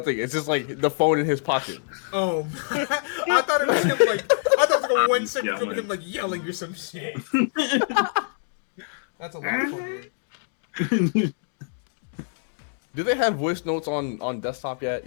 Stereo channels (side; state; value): right; silent; digital silence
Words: It's just like the phone in his pocket. Oh, I thought it was him like I thought it was like a 1 second from him like yelling or some shit. That's a lot of fun. Do they have voice notes on desktop yet?